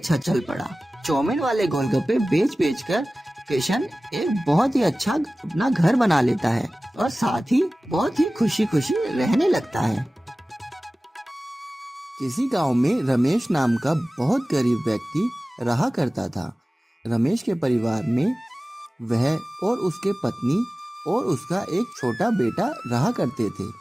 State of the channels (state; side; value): normal; both; correlation 0.97